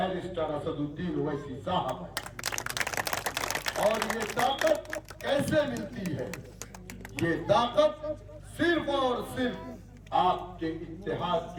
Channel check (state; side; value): identical; both; correlation 1.00